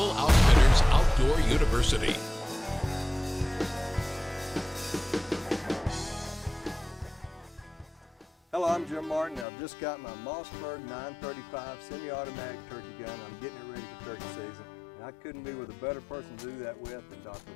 Outfitters Outdoor University. Hello, I'm Jim Martin. I've just got my Mossberg 935 semi-automatic turkey gun. I'm getting it ready for turkey season. And I couldn't be with a better person to do that with than Dr.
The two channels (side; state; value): right; drops out; at 9.5 s